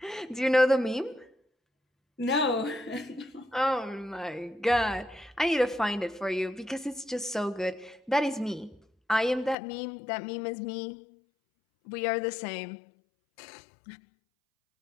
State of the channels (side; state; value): right; drops out; at 9.6 s